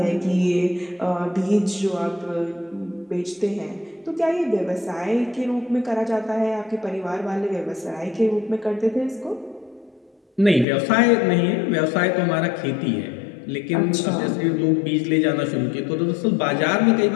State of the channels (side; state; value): right; drops out; at 10.7 s